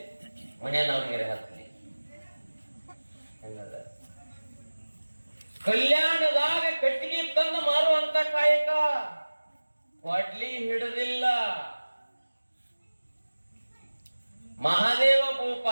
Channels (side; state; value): both; inverted; correlation -1.00